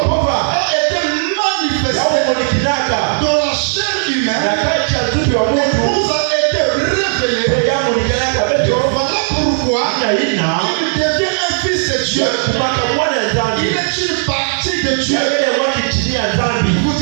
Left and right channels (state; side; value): silent; left; digital silence